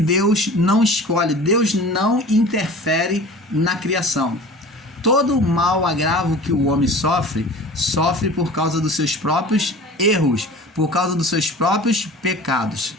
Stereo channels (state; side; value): normal; both; correlation 0.40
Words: não escolhe, Deus não interfere na criação. Todo mal agravo que o homem sofre por causa dos seus próprios erros, por causa dos seus próprios pecados.